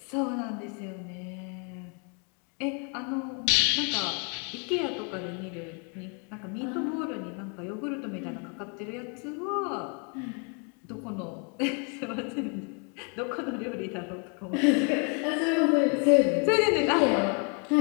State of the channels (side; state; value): right; quieter; 37.3 dB